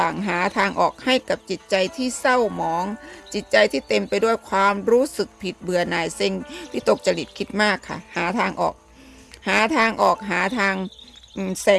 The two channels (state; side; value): identical; both; correlation 1.00